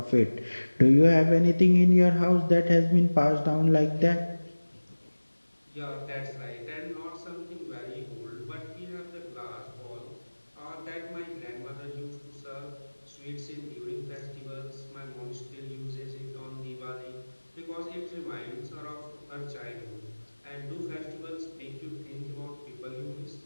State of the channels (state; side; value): inverted; both; correlation -1.00